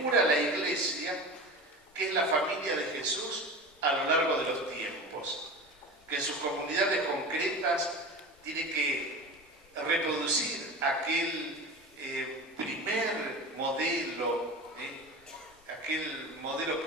la iglesia, que es la familia de Jesús a lo largo de los tiempos, que en sus comunidades concretas tiene que reproducir aquel primer modelo, aquel modelo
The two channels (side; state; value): both; normal; correlation 0.31